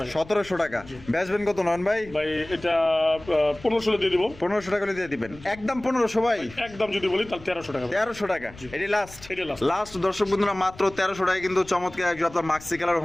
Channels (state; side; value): noise; left; rumble, 19 dB below the sound